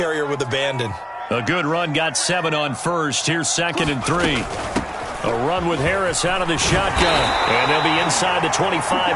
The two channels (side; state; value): both; identical; correlation 1.00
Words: with abandon. A good run got 7 on 1st. Here's 2nd and 3. A run with Harris out of the shotgun. And they'll be inside the